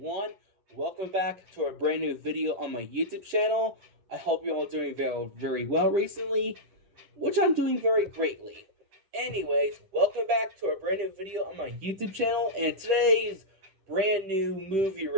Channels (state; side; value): late; left; 10 ms